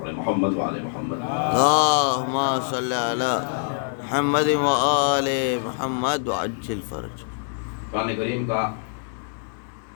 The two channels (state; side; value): silent; right; digital silence